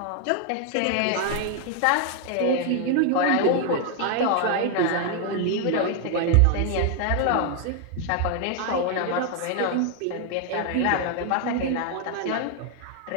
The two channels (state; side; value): different; both; correlation 0.00